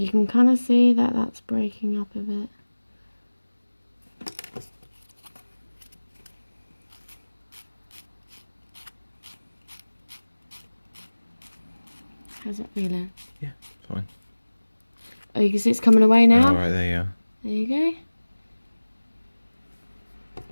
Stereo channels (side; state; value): both; inverted; correlation -1.00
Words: can kind of see that that's breaking up a bit. How's that feeling? Yeah, fine. Oh, you can see it's coming away now? Oh, right, there you are. There you go.